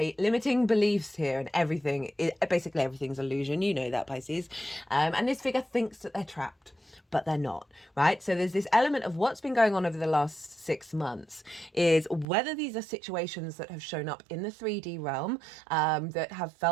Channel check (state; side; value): drops out; left; at 12.2 s